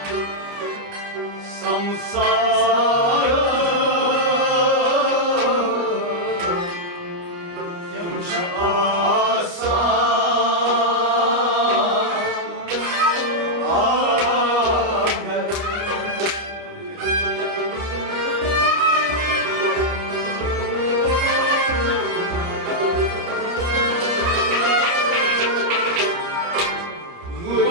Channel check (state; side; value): late; left; 29 ms